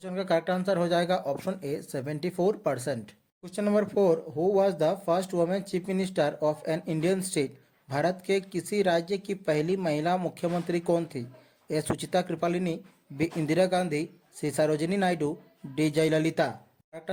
का करेक्ट आंसर हो जाएगा option A 74%। Question number 4, who was the first women chief minister of an Indian state? Bharat के किसी राज्य की पहली महिला मुख्यमंत्री कौन थी? A Sucheta Kripalani, B Indira Gandhi, C Sarojini Naidu, D Jayalalithaa. Correct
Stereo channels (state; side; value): identical; both; correlation 1.00